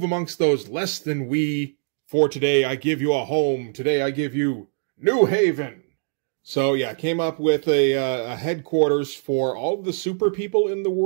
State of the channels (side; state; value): left; silent; digital silence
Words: amongst those less than we. For today I give you a home. Today I give you New Haven. So yeah, came up with a headquarters for all of the super people in the